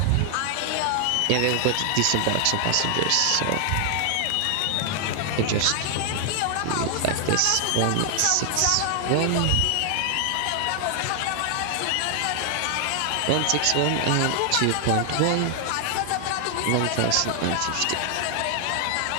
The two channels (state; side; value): different; both; correlation 0.00